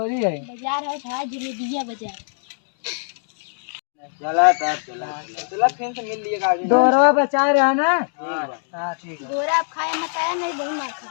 है बाजार है था जलेबिया बाजार। चला तब चला फिर से मिल लिएगा आगे। दोरवा बचा रहे ना। हाँ ठीक है। दोरा आप खाए मत आया नहीं बहुत मार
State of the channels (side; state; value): right; silent; digital silence